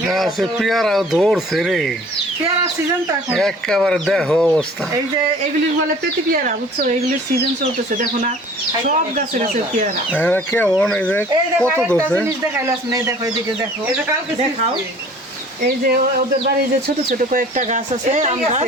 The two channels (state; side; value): normal; both; correlation 0.49